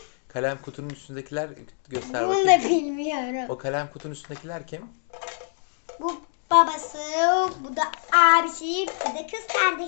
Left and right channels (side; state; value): right; silent; 62 dB below the other